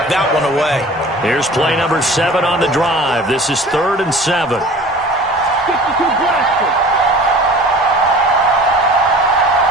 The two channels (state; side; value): normal; both; correlation 0.43